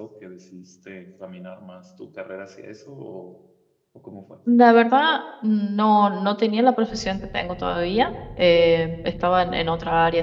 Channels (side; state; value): both; identical; correlation 1.00